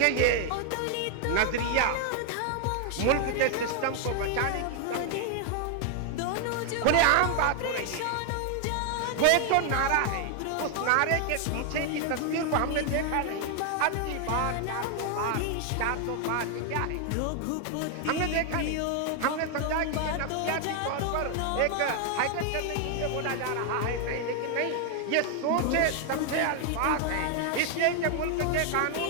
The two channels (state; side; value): different; both; correlation 0.00